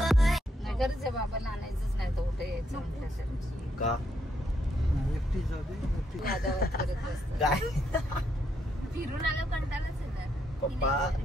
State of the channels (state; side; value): normal; both; correlation 0.77